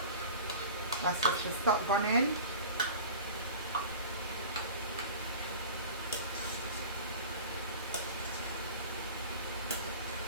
That's what should stop burning.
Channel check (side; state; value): both; inverted; correlation -0.38